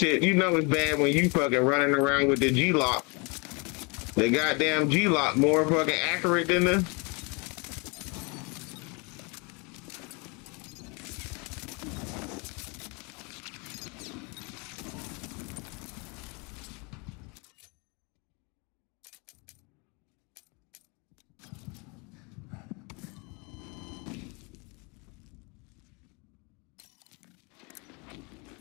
you know it's bad when you fucking running around with the G-Lock. The goddamn G-Lock more fucking accurate than the...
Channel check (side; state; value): right; quieter; 31.0 dB